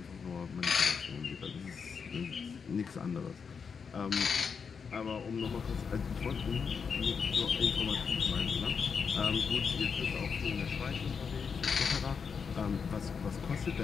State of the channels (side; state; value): right; quieter; 6.0 dB